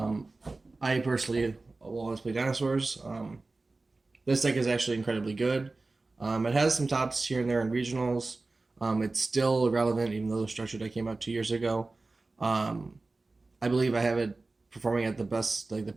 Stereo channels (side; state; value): left; quieter; 3.4 dB